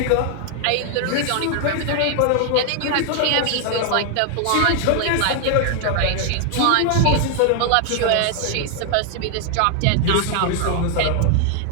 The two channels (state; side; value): different; both; correlation 0.00